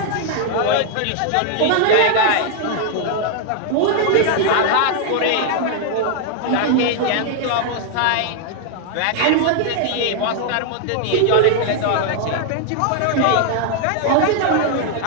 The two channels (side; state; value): both; different; correlation 0.00